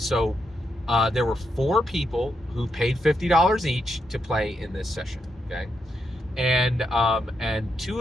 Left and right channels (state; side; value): normal; both; correlation 0.82